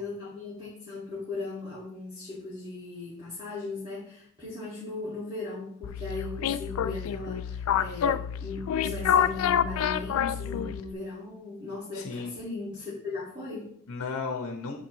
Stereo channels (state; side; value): quieter; right; 6.6 dB